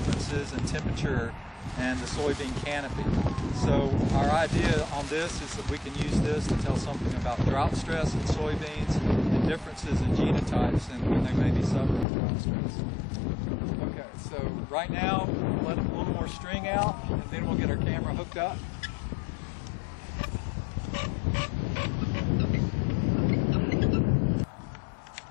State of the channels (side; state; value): right; drops out; at 12.1 s